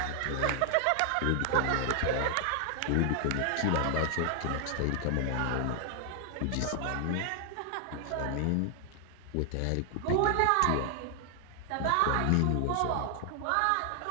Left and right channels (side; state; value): both; different; correlation 0.00